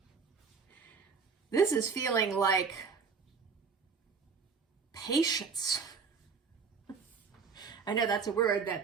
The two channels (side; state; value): left; quieter; 5.5 dB